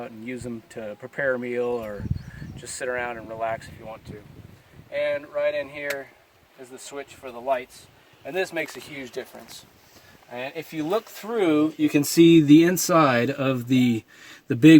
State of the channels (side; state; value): both; identical; correlation 1.00